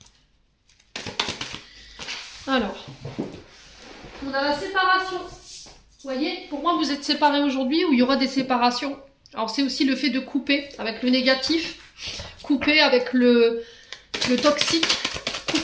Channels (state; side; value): identical; both; correlation 1.00